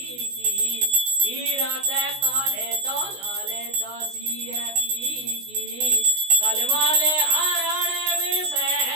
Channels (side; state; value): left; late; 16 ms